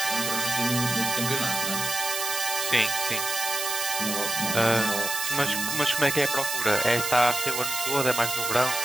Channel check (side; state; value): right; noise; hiss, 2 dB below the sound